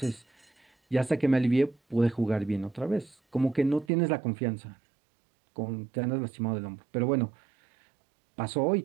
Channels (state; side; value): drops out; left; at 3.9 s